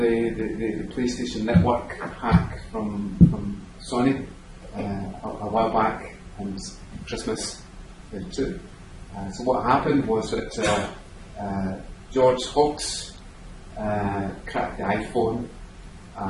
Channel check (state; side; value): identical; both; correlation 1.00